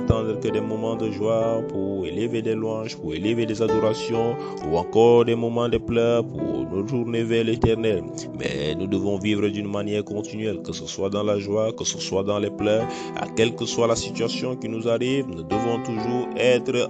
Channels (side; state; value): both; identical; correlation 1.00